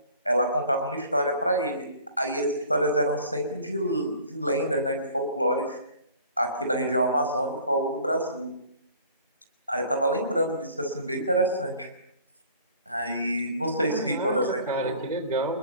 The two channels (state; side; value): inverted; both; correlation -0.49